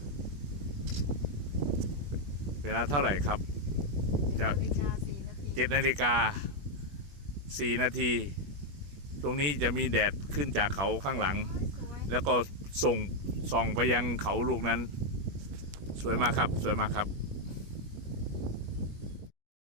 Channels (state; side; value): late; left; 21 ms